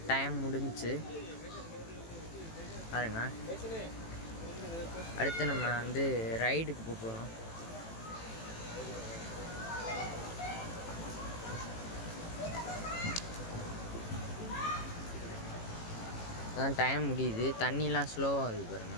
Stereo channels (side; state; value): right; late; 18 ms